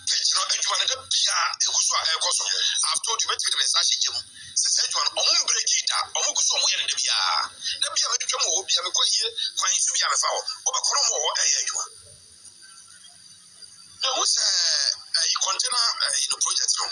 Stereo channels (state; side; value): identical; both; correlation 1.00